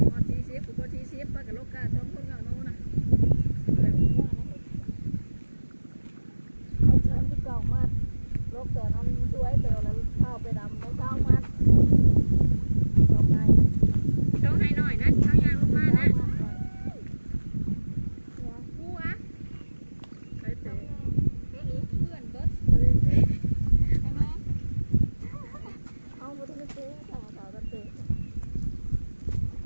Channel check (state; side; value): inverted; both; correlation -1.00